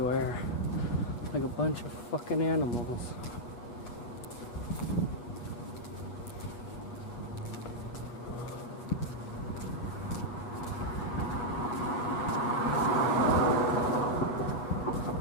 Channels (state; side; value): late; right; 8.3 ms